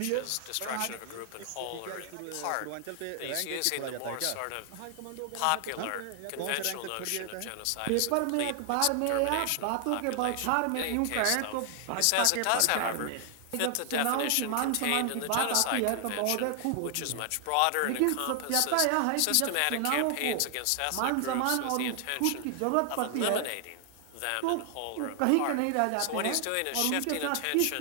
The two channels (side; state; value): both; different; correlation 0.00